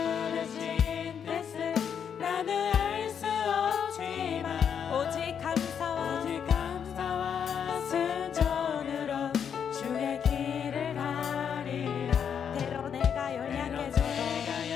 뜻을 나는 알 수 없지만 오직 감사와 순종으로 주의 길을 가리라. 때로 내가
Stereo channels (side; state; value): right; quieter; 7.7 dB